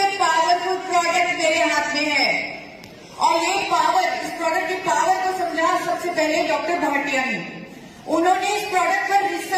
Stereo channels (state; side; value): identical; both; correlation 1.00